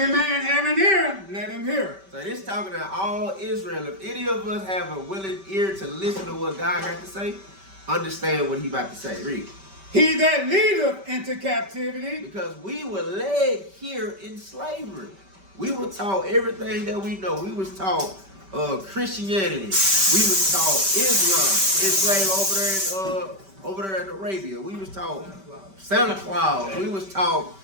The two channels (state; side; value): late; left; 5.2 ms